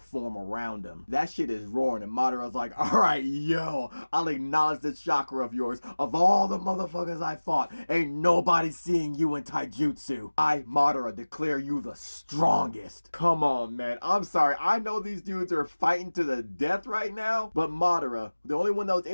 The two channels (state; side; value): inverted; both; correlation -1.00